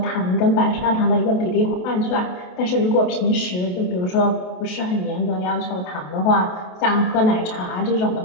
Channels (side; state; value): right; late; 28 ms